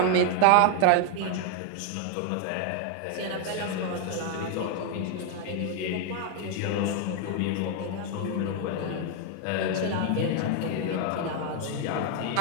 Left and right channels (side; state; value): both; different; correlation 0.00